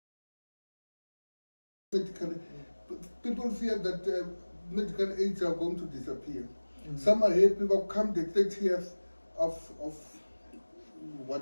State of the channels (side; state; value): both; inverted; correlation -1.00